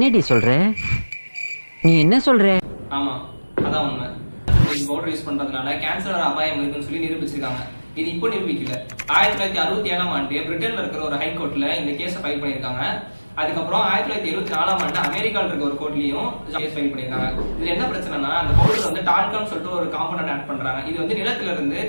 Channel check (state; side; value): inverted; both; correlation -1.00